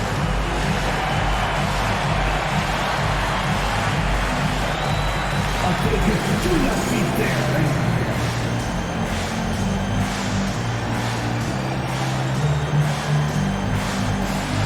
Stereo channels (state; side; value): identical; both; correlation 1.00